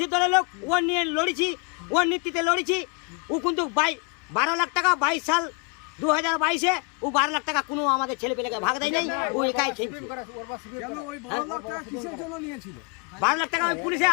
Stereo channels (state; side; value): quieter; right; 35.4 dB